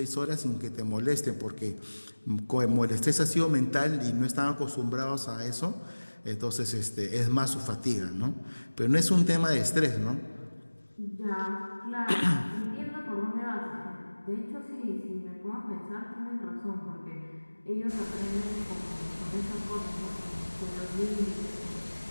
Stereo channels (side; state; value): both; inverted; correlation -1.00